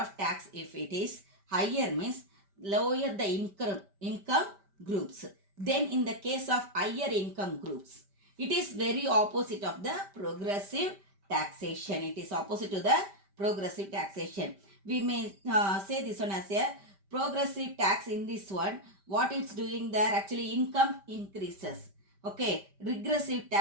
tax, if it is higher, means lower the income groups. Then in the case of higher income groups, it is very opposite of the progressive taxation. It is opposite to the progressive taxation. We may say this one as a progressive tax. In this one, what it's doing there, actually income increases. Okay, regressive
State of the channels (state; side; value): late; left; 5.1 ms